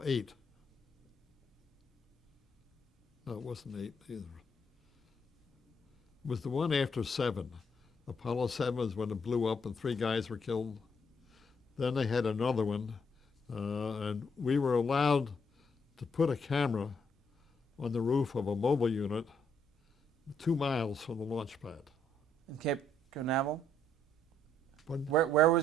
8. No, it wasn't 8 either. It was the one after 7. Apollo 7 was when it blew up and 3 guys were killed. Then they had another one, and we were allowed to put a camera on the roof of a mobile unit 2 miles from the launch pad. In Cape Canaveral? Pardon? Where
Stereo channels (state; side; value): normal; both; correlation 0.72